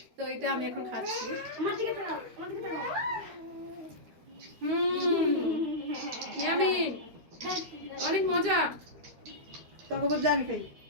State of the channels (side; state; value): left; late; 13 ms